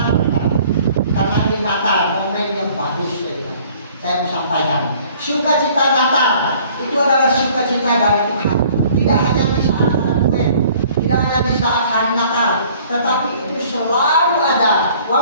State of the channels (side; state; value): both; inverted; correlation -0.55